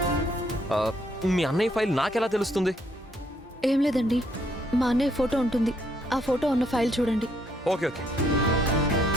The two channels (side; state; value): both; normal; correlation 0.71